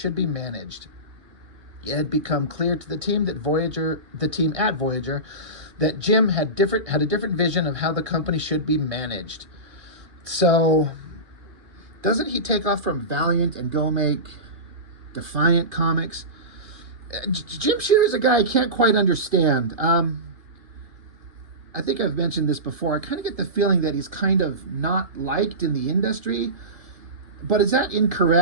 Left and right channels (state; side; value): late; left; 1.6 ms